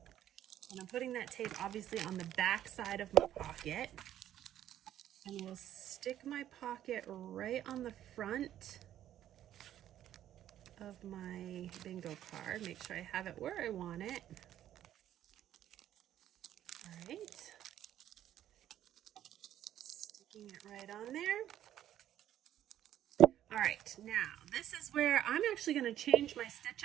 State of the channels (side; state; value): left; quieter; 11.7 dB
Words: And I'm putting that tape obviously on the back side of my pocket, and we'll stick my pocket right on the front of my bingo card. Make sure I have it where I want it. All right, sticking it right on there. All right, now this is where I'm actually going to change my stitch